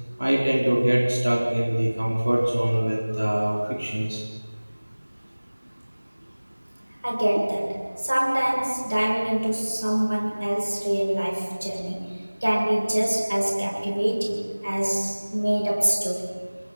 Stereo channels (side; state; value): both; inverted; correlation -1.00